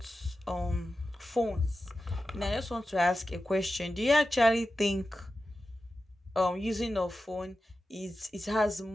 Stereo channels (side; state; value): both; normal; correlation 0.92